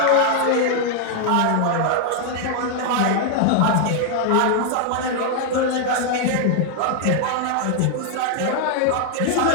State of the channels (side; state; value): both; different; correlation 0.00